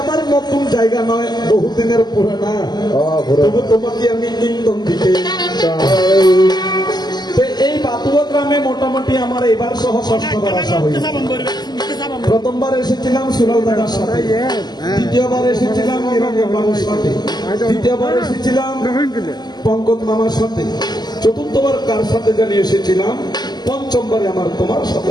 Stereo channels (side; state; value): right; late; 0.20 ms